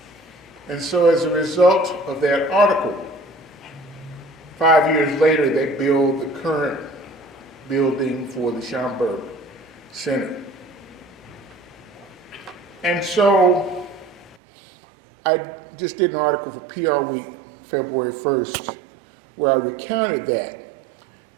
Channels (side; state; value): left; drops out; at 14.4 s